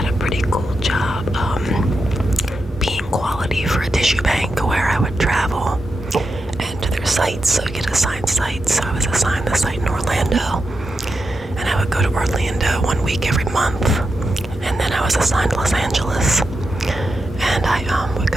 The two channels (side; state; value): both; normal; correlation 0.87